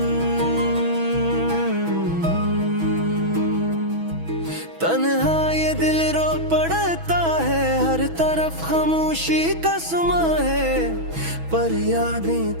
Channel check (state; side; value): late; left; 6.1 ms